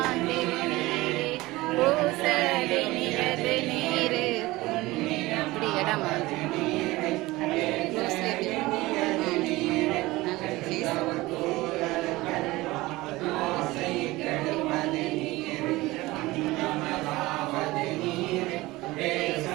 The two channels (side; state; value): left; quieter; 19.8 dB